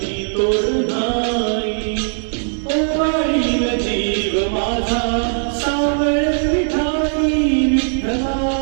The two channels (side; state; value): left; silent; digital silence